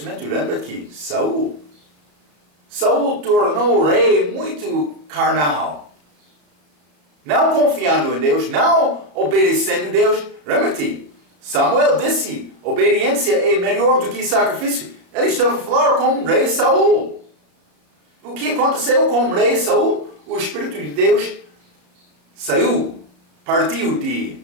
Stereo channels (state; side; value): late; left; 33 ms